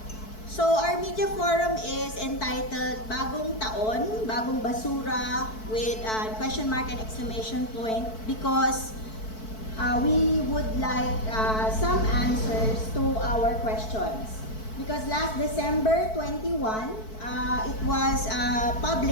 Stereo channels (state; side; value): late; right; 4.6 ms